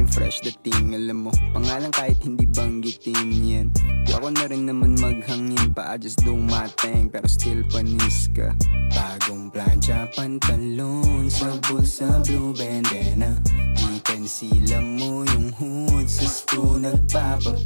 fresh dating. Alam mo, pangalan kahit hindi banggitin yan. Di ako na rin naman maghangin pa, I just do my thing, pero still panis ka. Bagong plancha, pantalon, sa bulsa, blue bandana. Chicken sila mo yung hood, sa sto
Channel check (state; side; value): inverted; both; correlation -1.00